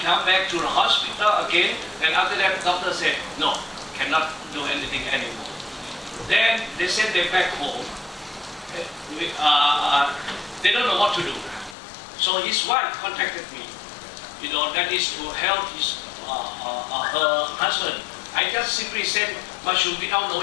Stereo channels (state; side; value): drops out; right; at 11.8 s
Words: come back to the hospital again, and after that, doctor said, no, cannot do anything anymore. Then they sent them back home. They don't know what to do. So his wife contacted me. That is to help her husband. I just simply said mushroom without